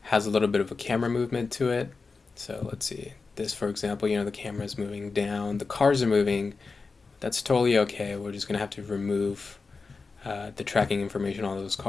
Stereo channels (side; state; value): right; quieter; 4.3 dB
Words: has a little bit of a camera movement to it. So let's see. This, for example, the camera is moving down, the cars are moving. That's totally okay. We're just going to have to remove the tracking information on those